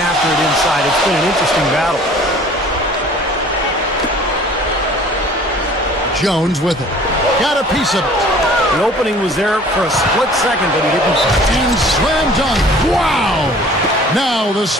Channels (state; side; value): normal; both; correlation 0.50